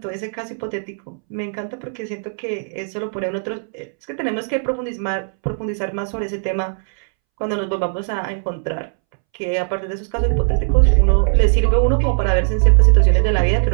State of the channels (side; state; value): left; silent; 66 dB below the other